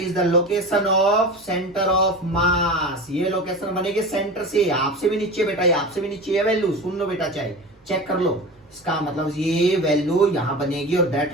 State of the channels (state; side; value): normal; both; correlation 0.31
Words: location of centre of मास, ये लोकेशन बनेगी सेंटर से, आपसे भी नीचे बेटा, ये आपसे भी नीचे है वैल्यू, सुन लो बेटा, चाहे चेक कर लो, इसका मतलब ये वैल्यू यहां बनेगी, और that